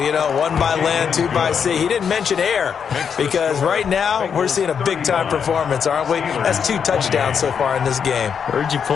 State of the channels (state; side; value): quieter; right; 7.1 dB